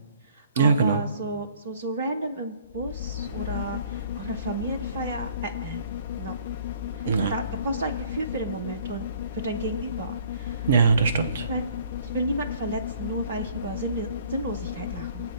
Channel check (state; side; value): inverted; both; correlation -0.56